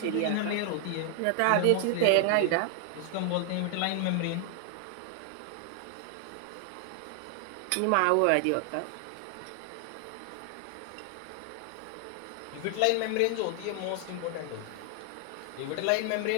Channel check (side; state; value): both; different; correlation 0.00